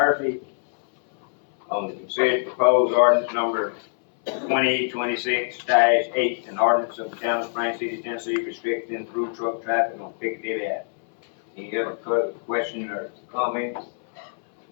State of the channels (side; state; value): right; silent; 62 dB below the other